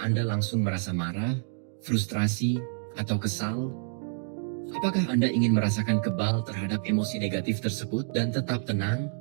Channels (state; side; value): silent; left; 59 dB below the other